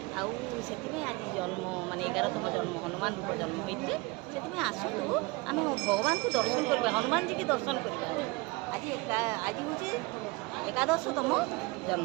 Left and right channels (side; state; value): left; quieter; 24.9 dB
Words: आज जन्म माने 11तम जन्म हनुमान रूप जन्म होते से आसतु आम भगवान को दर्शन करवा हनुमान जी की दर्शन करवा आज आज हूँ 11तम